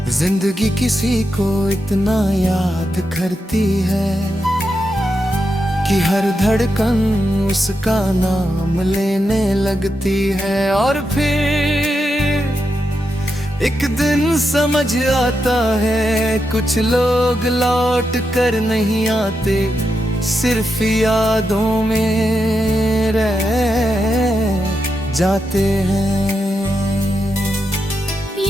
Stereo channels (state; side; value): normal; both; correlation 0.86